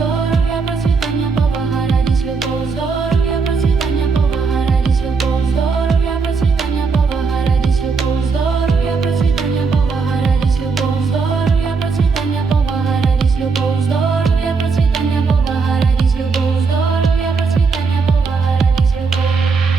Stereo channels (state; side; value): quieter; left; 4.8 dB